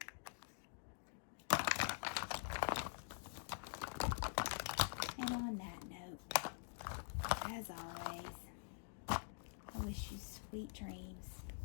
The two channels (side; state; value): right; silent; digital silence